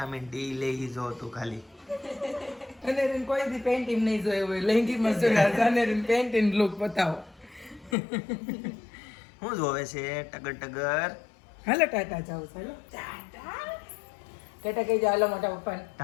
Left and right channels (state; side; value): drops out; right; at 8.0 s